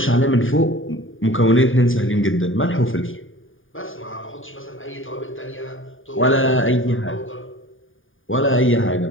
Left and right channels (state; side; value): late; right; 0.58 ms